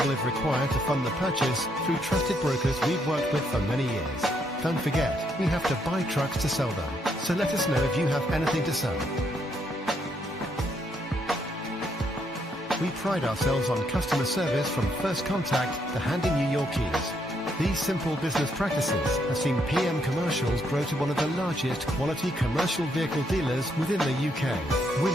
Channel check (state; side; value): normal; both; correlation 0.74